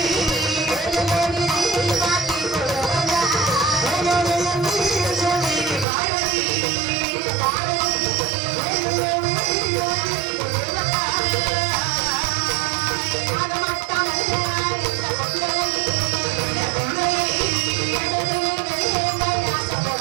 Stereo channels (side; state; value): left; drops out; at 5.9 s